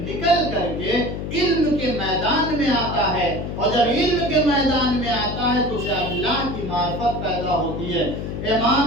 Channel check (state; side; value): noise; left; hum, 5 dB below the sound